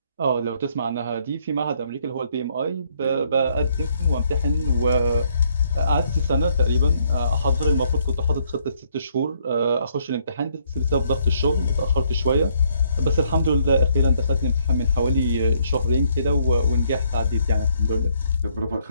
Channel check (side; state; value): both; inverted; correlation -0.69